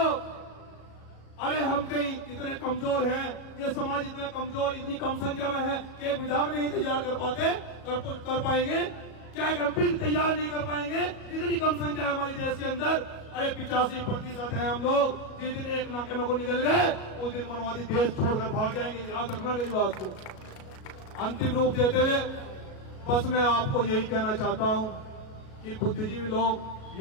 अरे हम कहीं इतने कमजोर हैं, ये समाज इतना कमजोर, इतनी कम संख्या में है कि एक विधायक नहीं तैयार कर पाएंगे, क्या एक एमपी तैयार नहीं कर पाएंगे? इतनी कम संख्या है हमारे देश के अंदर। अरे 85% है हम लोग। जिस दिन एक नाके में को निकल गए उस दिन मनवादी देश छोड़कर भाग जाएंगे। याद रखना मेरी बात को। अंतिम रूप देते हुए बस मैं आपको यही कहना चाहता हूं कि बुद्धिजीवी लोग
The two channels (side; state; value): right; late; 37 ms